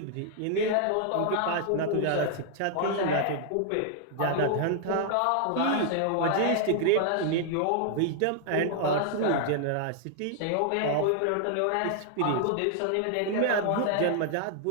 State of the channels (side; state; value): both; different; correlation 0.00